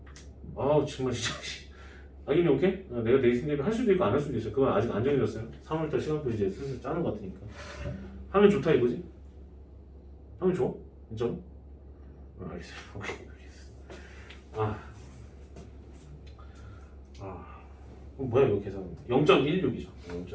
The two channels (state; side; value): identical; both; correlation 1.00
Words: 정말 진짜 아니 오케이? 내가 내신 대비 할 수도 있고 안 할 수도 있어 그건 아직 안 정해졌어요 3월달 시간표 이제 슬슬 짜는 것 같으니까 하면 좋다 이거지? 하면 좋아? 진짜로? 알겠어요 오케이 뭐야 이거 계산 0.16이죠